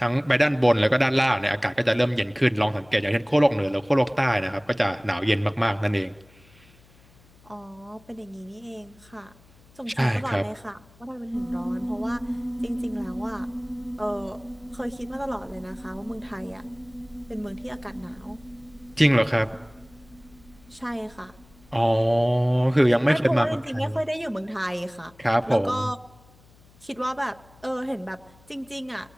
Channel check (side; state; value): left; noise; hum, 27 dB below the sound